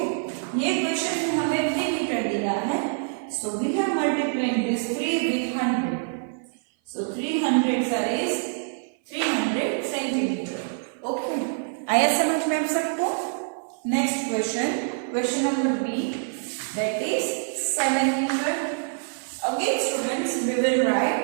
ये क्वेश्चन में हमें 3 मीटर दिया है. So we have multiplied this 3 with 100. So 300 sir is 300 centimetre. Okay. आया समझ में आप सबको? Next question, question number B, that is 7 metre. Again students we will write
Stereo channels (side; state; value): left; silent; 56 dB below the other